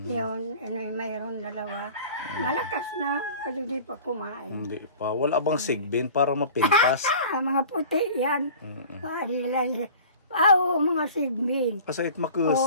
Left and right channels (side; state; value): both; inverted; correlation -0.42